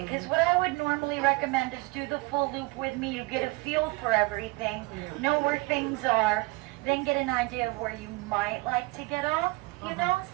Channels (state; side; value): quieter; left; 24.2 dB